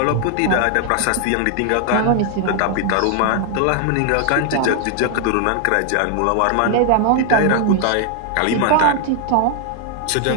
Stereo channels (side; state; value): both; different; correlation 0.00